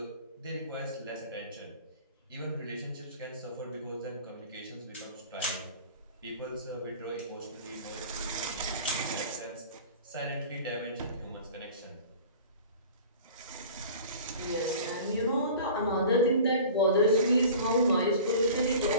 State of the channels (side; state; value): both; inverted; correlation -0.41